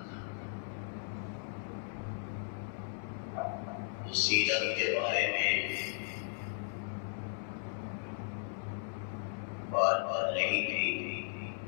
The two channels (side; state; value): right; silent; 54 dB below the other